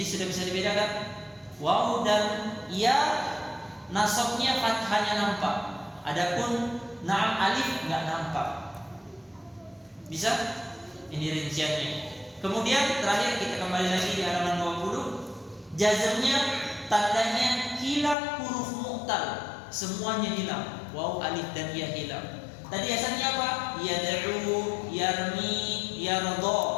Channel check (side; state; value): right; drops out; at 18.2 s